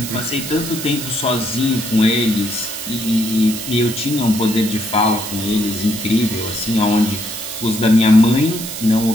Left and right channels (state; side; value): noise; right; hiss, 8 dB below the sound